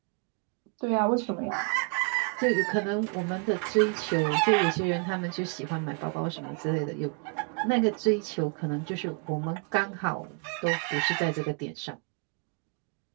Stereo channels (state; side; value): quieter; left; 35.3 dB